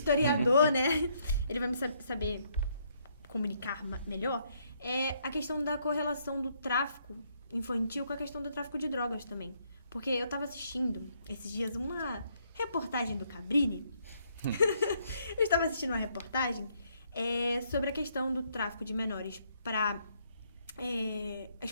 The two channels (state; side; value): inverted; both; correlation -0.71